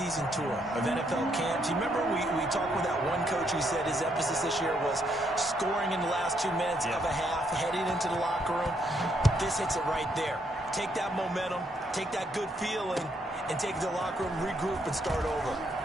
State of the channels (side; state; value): both; normal; correlation 0.74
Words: tour of NFL camps. You remember we talked with that one coach who said his emphasis this year was scoring in the last 2 minutes of a half, heading into the locker room. This hits it right there. Take that momentum, take that good feeling, and take it to the locker room, regroup, and start over.